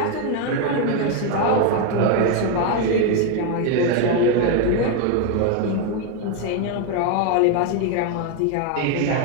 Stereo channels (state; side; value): different; both; correlation 0.02